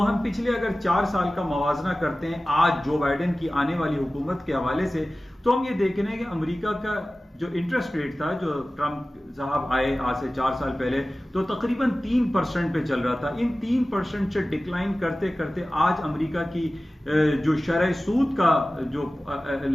पिछले अगर 4 साल का मवाजना करते हैं आज जो बाइडेन की आने वाली हुकूमत के हवाले से, तो हम ये देख रहे हैं कि अमेरिका का जो इंटरेस्ट रेट था, जो ट्रंप साहब आए आज से 4 साल पहले, तो तकरीबन 3% पे चल रहा था। इन 3% से डिक्लाइन करते करते आज अमेरिका की जो शरह सूद का जो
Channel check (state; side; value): normal; both; correlation 0.97